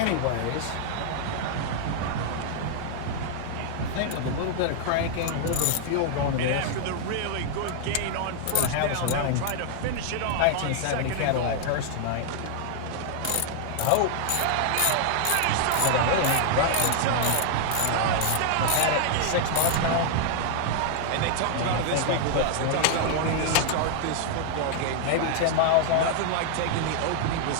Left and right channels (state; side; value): different; both; correlation 0.00